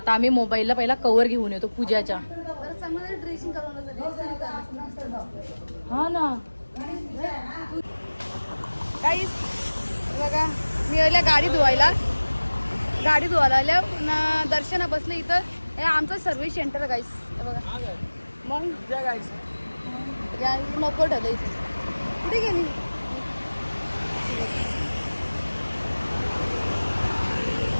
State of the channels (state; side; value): inverted; both; correlation -1.00